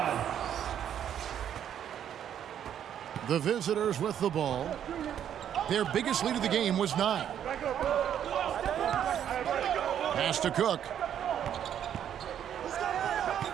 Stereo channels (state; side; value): quieter; left; 9.7 dB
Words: The visitors with the ball. Their biggest lead of the game was 9. Pass to Cook.